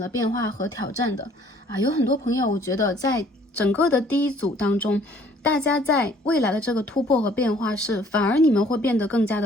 变化和挑战的啊，有很多朋友，我觉得在整个的第一组当中，大家在未来的这个突破和变化是，反而你们会变得更加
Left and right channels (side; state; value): both; normal; correlation 0.58